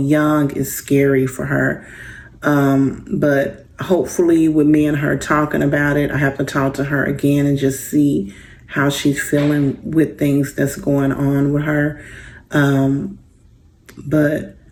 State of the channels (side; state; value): both; identical; correlation 1.00